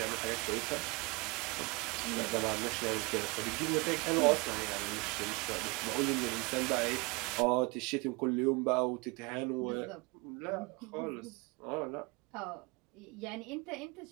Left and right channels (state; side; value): quieter; left; 27.5 dB